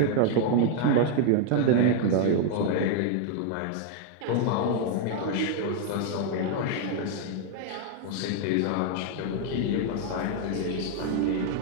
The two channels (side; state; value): both; different; correlation 0.00